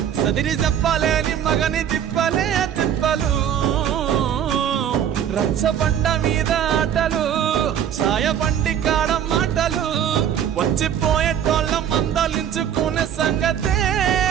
సదిరి చెప్పలేని మగని తిప్పలే తిప్పలు. రచ్చబండ మీద ఆటలు ఛాయ బండి కాడ మాటలు. వచ్చిపోయే టోళ్ళ మందలించుకునే సంగతే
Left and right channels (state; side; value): quieter; left; 9.4 dB